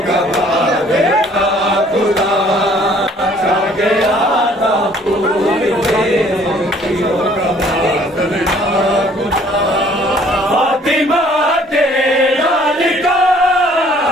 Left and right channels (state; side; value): normal; both; correlation 0.58